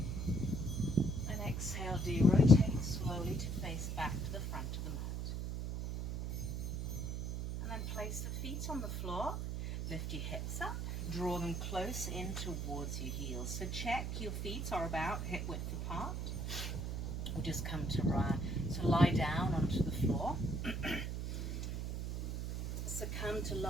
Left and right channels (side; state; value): right; noise; hum, 3 dB below the sound